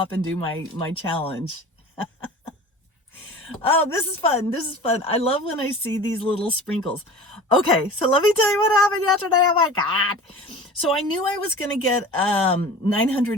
and do my challenge. Oh, this is fun. This is fun. I love when I see these little sprinkles. Okay, so let me tell you what happened yesterday. Oh my God. So I knew I was going to get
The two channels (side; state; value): both; normal; correlation 0.38